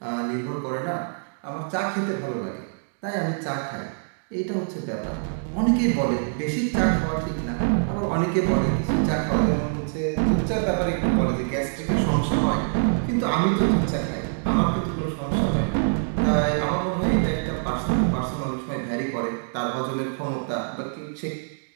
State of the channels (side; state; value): left; silent; digital silence